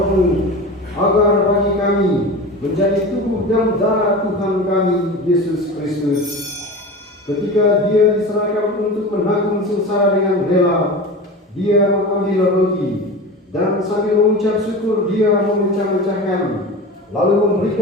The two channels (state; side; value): normal; both; correlation 0.31